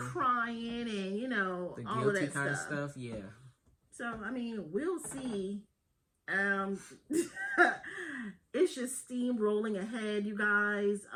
and, you know, the all of that kind of stuff, yeah. So, I mean, we'll see. It's just steamrolling ahead, you guys.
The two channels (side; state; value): both; identical; correlation 1.00